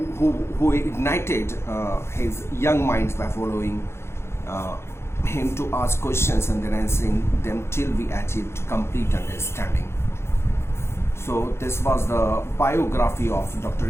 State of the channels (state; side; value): late; right; 0.12 ms